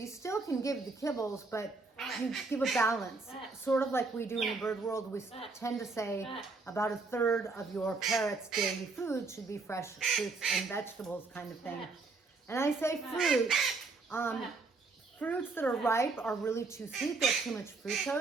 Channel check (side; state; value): left; quieter; 3.9 dB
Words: still can give the kibbles, but you give a balance. Sort of like we do in the bird world, we tend to say about a third of your parrot's daily food should be fresh fruits and vegetables kind of thing. And I say fruit. Fruits that are ripe are really too sweet. They're too much